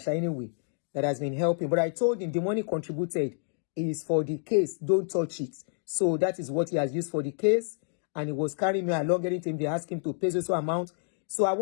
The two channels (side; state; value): right; silent; digital silence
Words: anyway, that has been helping. But I told him the money contributed is for the case. Don't touch it. So that is what he has used for the case. And he was carrying me along. Anytime they ask him to pay so amount. So I